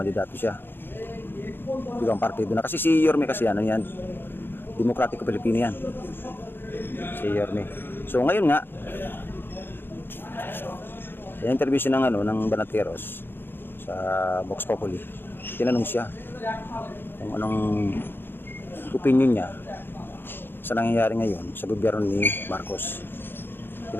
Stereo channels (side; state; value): right; late; 0.10 ms